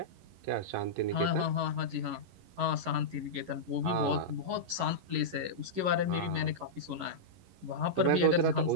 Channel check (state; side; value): late; left; 11 ms